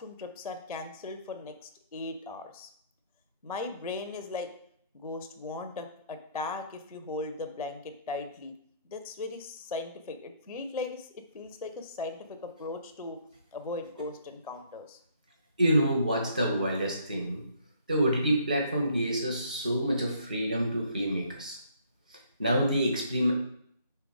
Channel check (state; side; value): inverted; both; correlation -0.65